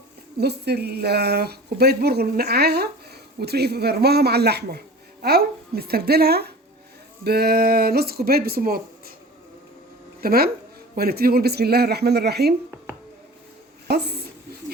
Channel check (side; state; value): both; normal; correlation 0.39